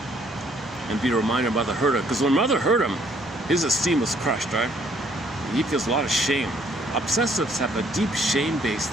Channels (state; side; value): normal; both; correlation 0.64